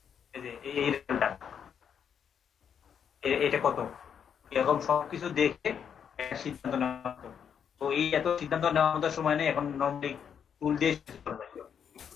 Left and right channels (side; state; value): right; quieter; 7.8 dB